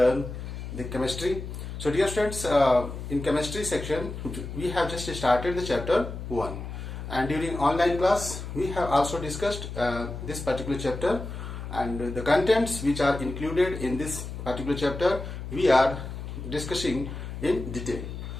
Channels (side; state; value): left; noise; hum, 8 dB below the sound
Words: the chemistry. So dear students, in chemistry section, we have just started the chapter 1. And during online class, we have also discussed this particular chapter and the contents which are included in this particular chapter, we are discussing in detail.